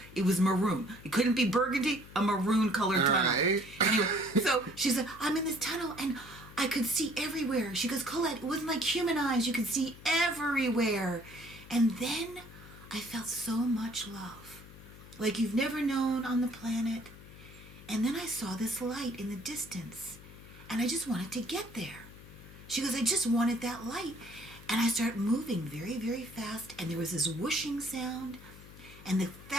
It was maroon. It couldn't be burgundy, a maroon-colored tunnel. Right. Anyway, so she said, I'm in this tunnel, and I could see everywhere. She goes, Colette, it wasn't like human eyes. You could see everywhere. And then I felt so much love, like you've never known on the planet. And then I saw this light in the distance, and I just wanted to get there. She goes, I just wanted that light. And I started moving very, very fast, and there was this whooshing sound. And the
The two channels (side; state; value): left; noise; hum, 18 dB below the sound